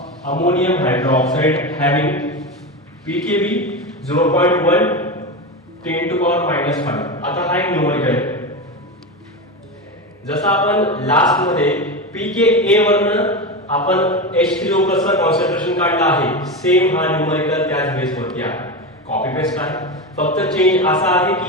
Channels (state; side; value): normal; both; correlation 0.19